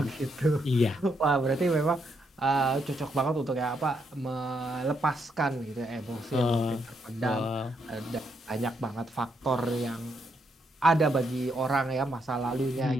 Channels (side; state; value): both; normal; correlation 0.77